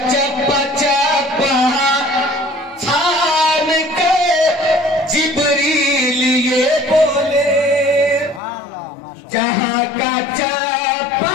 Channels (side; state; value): right; drops out; at 8.4 s